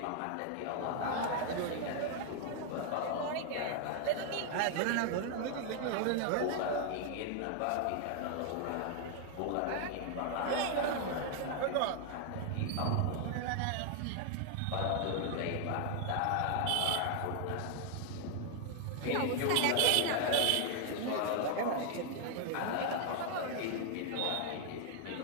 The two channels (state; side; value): different; both; correlation 0.00